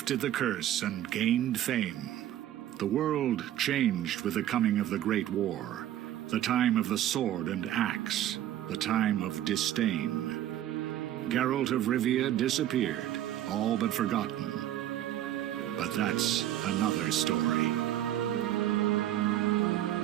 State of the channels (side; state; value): left; quieter; 12.3 dB